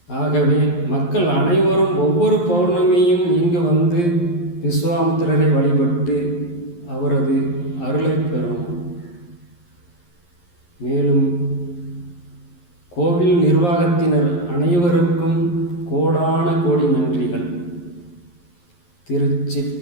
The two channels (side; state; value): right; late; 11 ms